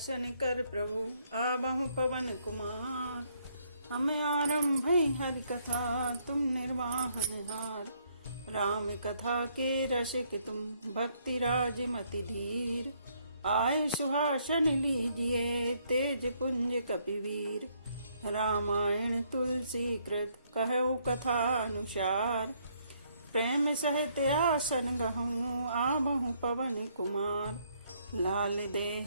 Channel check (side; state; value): both; inverted; correlation -0.70